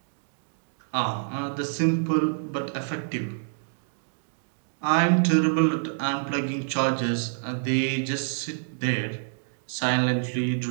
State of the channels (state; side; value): silent; left; digital silence